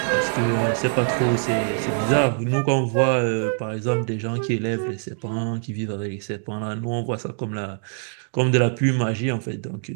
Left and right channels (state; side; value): silent; left; digital silence